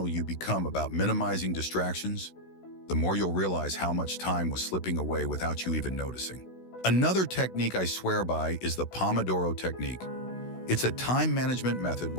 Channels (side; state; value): right; late; 16 ms